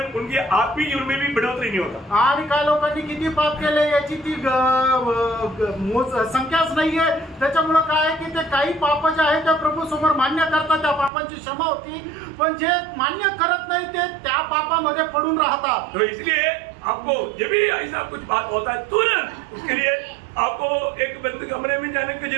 उनके आत्मिक जीवन में भी बढ़ोतरी नहीं होता. आणि काय लोकांनी किती पाप केले याची ती संख्याच नाहीये. त्याच्यामुळे काय आहे की ते काही पाप जे आहे ते प्रभू समोर मान्य करतात, त्या पापांची क्षमा होती. पण जे मान्य करत नाही ते त्या पापामध्ये पडून राहतात. तो इसलिए आपको जब भी ऐसा कुछ बात होता है तुरंत उसके लिए आपको एक बंद कमरे में जाने की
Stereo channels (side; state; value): left; drops out; at 11.1 s